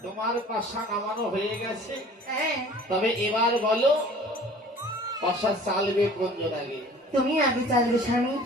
তোমার পাশা নামানো হয়ে গেছে হ্যাঁ তবে এবার বলো পাশা চালবে কোনজন আগে তুমি আগে চালবে স্বামী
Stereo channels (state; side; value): normal; both; correlation 0.47